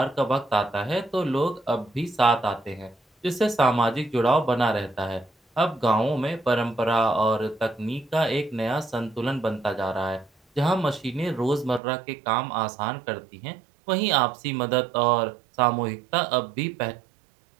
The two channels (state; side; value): drops out; left; at 11.8 s